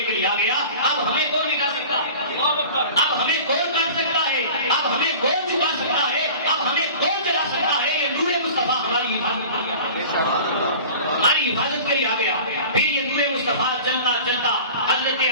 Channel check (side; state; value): both; inverted; correlation -0.40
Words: لیے آ گیا. اب ہمیں کون مٹا سکتا ہے؟ اب ہمیں کون کاٹ سکتا ہے؟ اب ہمیں کون جھکا سکتا ہے؟ اب ہمیں کون جلا سکتا ہے؟ یہ نور مصطفیٰ ہماری حفاظت کے لیے ہماری حفاظت کے لیے آ گیا. پھر یہ نور مصطفیٰ چلتا چلتا حضرت